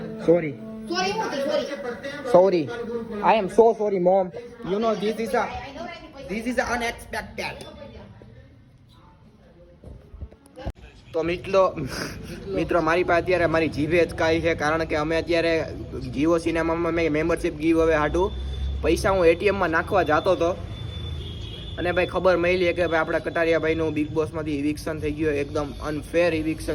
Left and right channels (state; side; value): identical; both; correlation 1.00